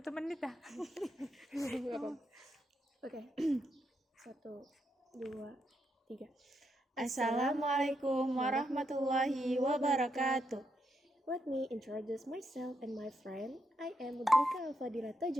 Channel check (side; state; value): both; normal; correlation 0.80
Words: menit dah. Oke. 1, 2, 3. Assalamualaikum warahmatullahi wabarakatuh. Let me introduce myself and my friend. I am Mudrika Al-Fadila